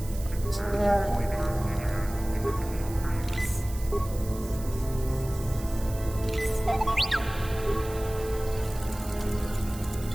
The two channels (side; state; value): right; noise; hiss, 16 dB below the sound